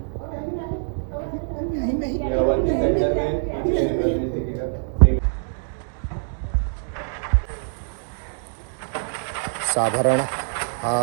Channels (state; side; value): silent; left; digital silence